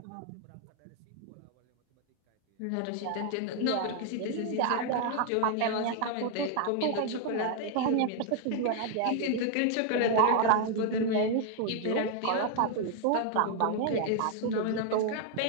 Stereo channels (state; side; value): different; both; correlation 0.00